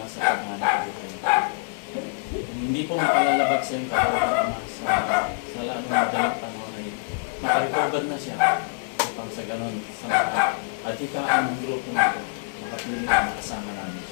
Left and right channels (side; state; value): right; silent; 57 dB below the other